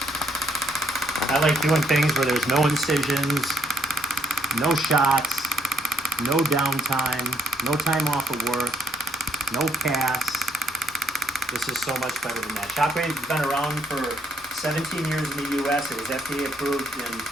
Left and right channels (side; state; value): both; normal; correlation 0.72